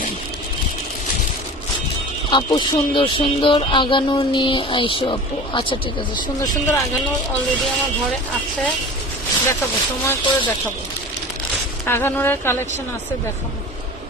নেই। আপু সুন্দর সুন্দর আগানো নিয়ে আইসো আপু, আচ্ছা ঠিক আছে, সুন্দর সুন্দর আগানো অলরেডি আমার ঘরে আছে, দেখাবো, সময় করে দেখাবো। আগানোরের কালেকশন আছে, দেখাবো।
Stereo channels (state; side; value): normal; both; correlation 0.36